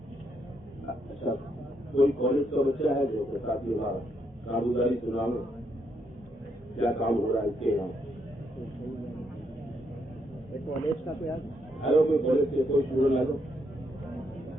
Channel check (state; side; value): normal; both; correlation 0.76